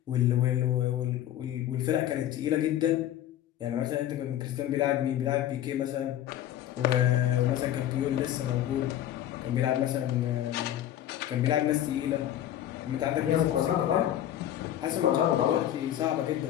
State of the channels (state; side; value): quieter; right; 12.0 dB